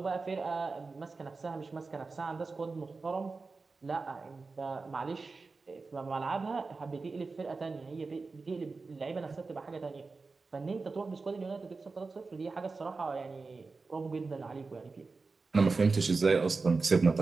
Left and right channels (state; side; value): quieter; left; 4.1 dB